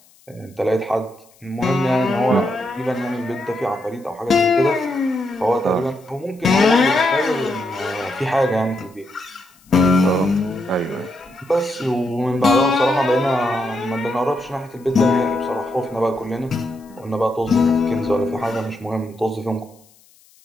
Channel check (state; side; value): noise; left; hiss, 30 dB below the sound